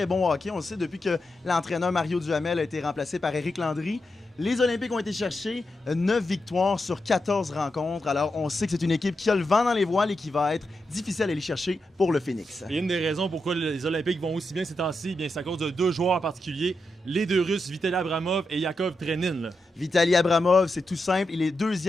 bon hockey. On le sait depuis que l'entraîneur Mario Duhamel a été remplacé par Éric Landry. Les Olympiques ont été chercher 9 victoires sur 14 rencontres. Alors, on sait que c'est une équipe qui a le vent dans les voiles et qui va être difficile à aller chercher pour le Phoenix. Et une des raisons pourquoi les Olympiques vont aussi bien ces temps-ci, c'est à cause de deux joueurs en particulier, les deux Russes, Vitaly Abramov et Yakov Trenin. Là. Vitaly Abramov, c'est tout simple. Il est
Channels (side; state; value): both; normal; correlation 0.87